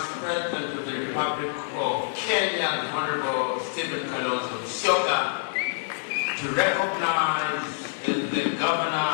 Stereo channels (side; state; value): right; silent; 59 dB below the other